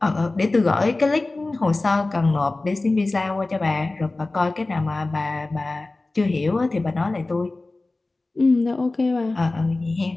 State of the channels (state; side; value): quieter; right; 3.1 dB